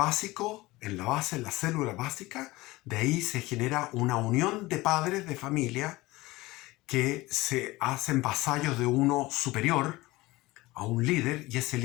en la base, en la célula básica, de ahí se genera una unión de padres de familia que se hacen vasallos de uno superior a un líder, y ese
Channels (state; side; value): quieter; right; 20.0 dB